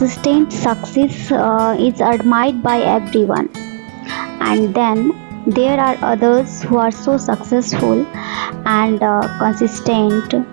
success is admired by everyone, and then there are others who are so successful and consistent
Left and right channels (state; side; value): silent; left; digital silence